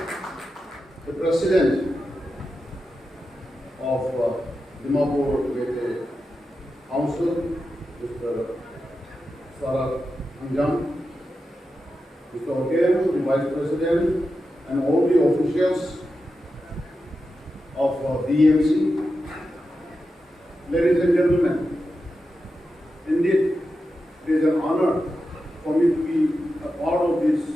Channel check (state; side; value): normal; both; correlation 0.90